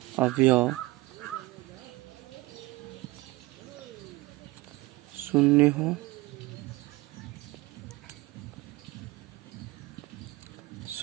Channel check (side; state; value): left; quieter; 20.5 dB